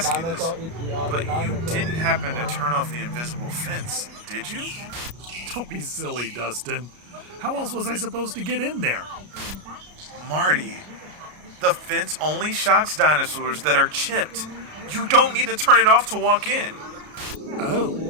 you this, but you didn't happen to turn off the invisible fence, did you? Don't be silly, Dustin. How else was I supposed to get in there? Marty, the fence only shocks dinosaurs that are chipped. You don't need to turn it off to walk in. Oh.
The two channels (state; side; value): late; left; 33 ms